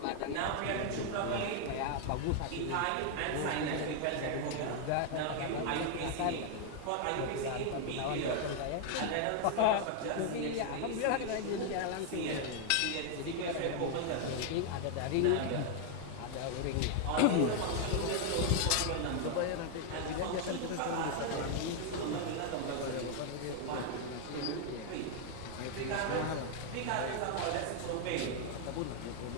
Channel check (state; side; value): different; both; correlation 0.00